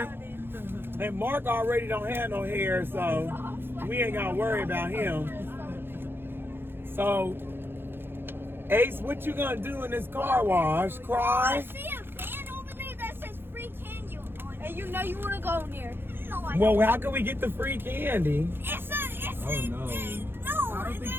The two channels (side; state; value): left; late; 0.10 ms